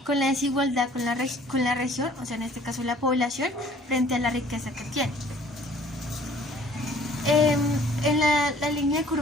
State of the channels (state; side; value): normal; both; correlation 0.55